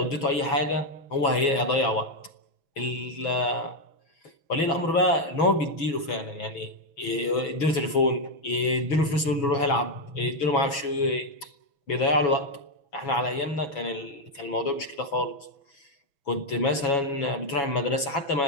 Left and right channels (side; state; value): right; late; 6.1 ms